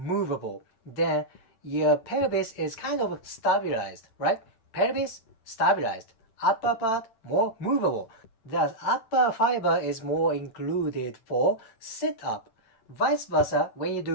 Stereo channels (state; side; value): late; right; 9.1 ms